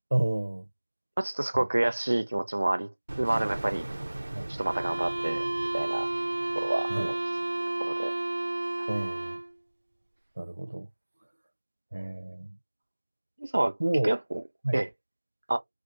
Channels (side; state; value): both; inverted; correlation -1.00